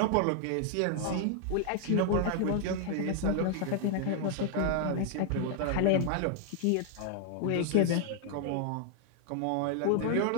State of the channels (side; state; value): both; different; correlation 0.00